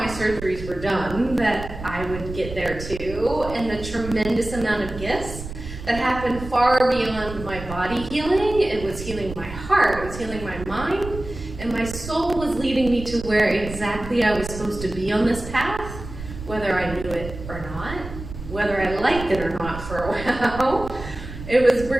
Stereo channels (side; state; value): right; noise; rumble, 11 dB below the sound